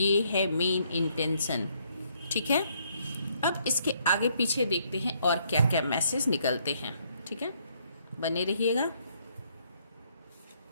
है मेन इंटेंशन, ठीक है। अब इसके आगे पीछे देखते हैं और क्या क्या मैसेज निकलते हैं, ठीक है। बने रहिएगा।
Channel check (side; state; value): both; inverted; correlation -0.70